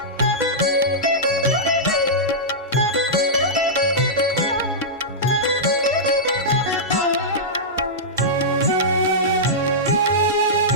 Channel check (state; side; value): normal; both; correlation -0.12